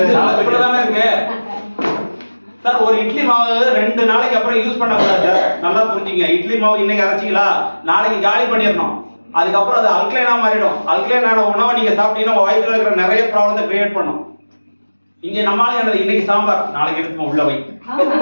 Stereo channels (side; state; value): both; inverted; correlation -1.00